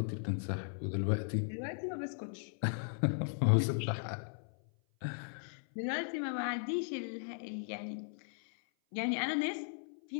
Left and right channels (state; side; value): silent; right; 53 dB below the other